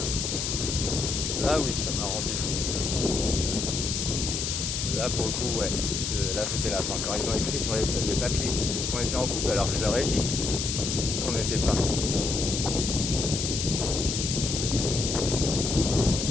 Là oui, ça m'a rendu fou. Là pour le coup, ouais, là c'était la fin. Quand ils ont écrit sur les papiers qu'on était en couple, alors que je leur ai dit qu'on n'était pas.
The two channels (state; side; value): noise; left; hiss, 2 dB below the sound